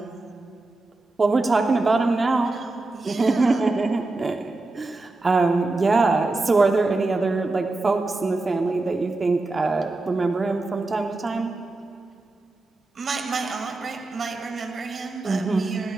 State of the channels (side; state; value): left; quieter; 3.2 dB